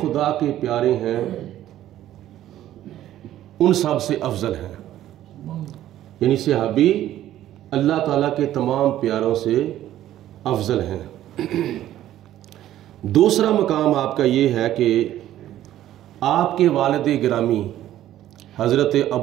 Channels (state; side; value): quieter; left; 12.9 dB